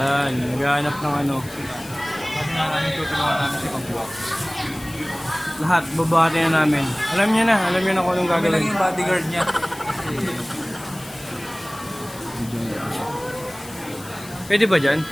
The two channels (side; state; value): left; noise; hiss, 18 dB below the sound